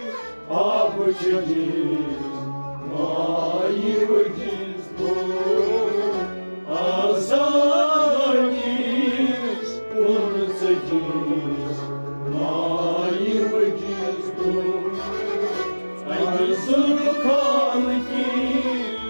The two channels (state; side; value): inverted; both; correlation -1.00